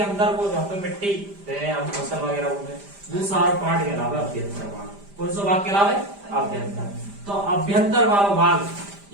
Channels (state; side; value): late; left; 5.0 ms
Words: अंदर को जहाँ पे मिट्टी हम फसल वगैरह होंगे दूसरा पार्ट कहलावे अभ्यंतर वाला। कौन सा भाग कहलावे? अभ्यंतर। तो अभ्यंतर वाला भाग